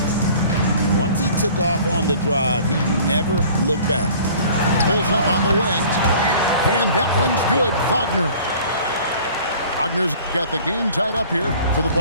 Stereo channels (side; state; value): both; inverted; correlation -0.49